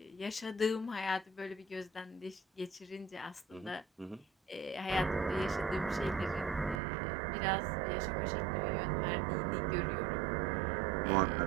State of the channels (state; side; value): drops out; left; at 6.8 s